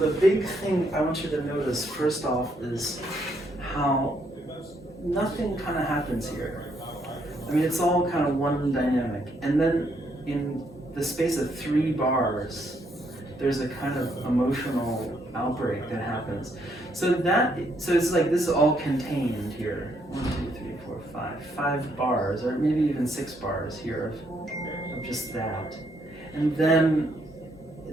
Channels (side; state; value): both; normal; correlation 0.73